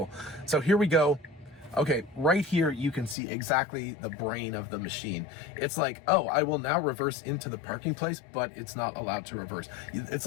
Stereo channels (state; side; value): drops out; right; at 3.2 s